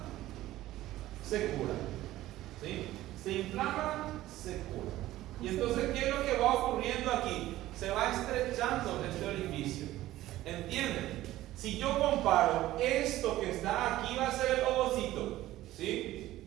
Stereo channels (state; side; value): quieter; left; 15.4 dB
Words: se cura. ¿Sí? Se inflama, se cura. Y entonces, ¿qué es lo que va ocurriendo aquí? Se va estrechando este orificio. ¿Entienden? Si yo comparo esto que está aquí, va a ser el ovocito, ¿sí?